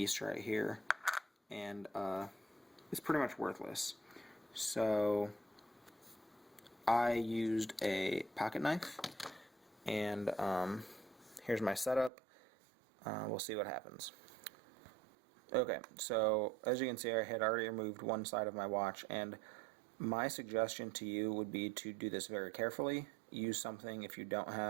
right here, and it's pretty much worthless. So I used a pocket knife, and here's my setup. We'll see what happens. Okay, so as you can see, I had already removed one side of my watch, and my suggestion to you would be to do this very carefully. Use something if you don't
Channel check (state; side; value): drops out; left; at 12.1 s